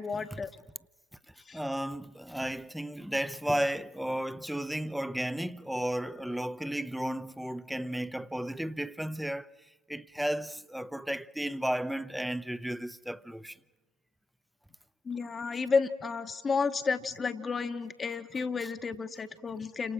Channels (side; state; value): both; normal; correlation 0.94